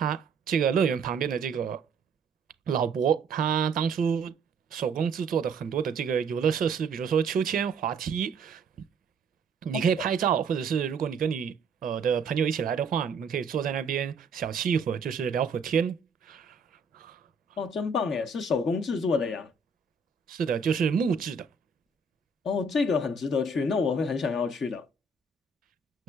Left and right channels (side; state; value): left; quieter; 3.9 dB